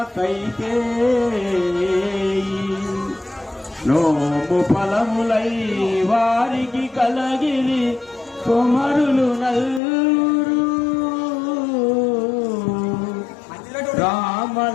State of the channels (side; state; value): right; drops out; at 9.8 s